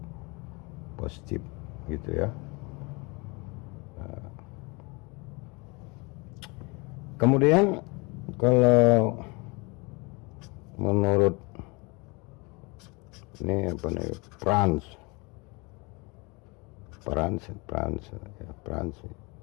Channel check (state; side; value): quieter; right; 28.1 dB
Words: positif gitu ya. Kemudian kalau menurut ini apa nih, Franz